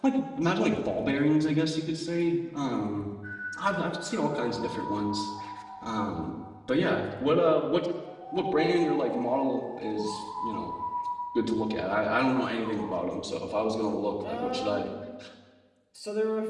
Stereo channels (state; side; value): identical; both; correlation 1.00